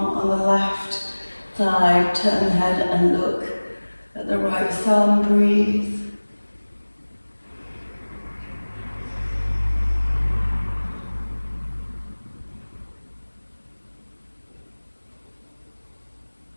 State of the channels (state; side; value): inverted; both; correlation -1.00